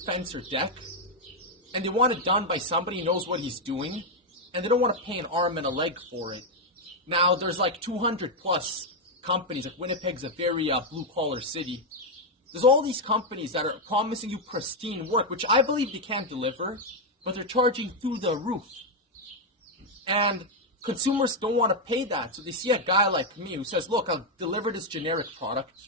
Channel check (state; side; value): normal; both; correlation 0.02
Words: fence or deck, and they want it done by somebody who knows what he's doing, and they don't want to pay an arm and a leg for it. Now, there's like 200 plus companies. Like Winnipeg's a very blue collar city. There's all these companies that are promising you pristine work, which I believe they can deliver, but they're charging through the roof. And consumers don't want to pay that. So they see a guy like me who says, look, I'll deliver this generic product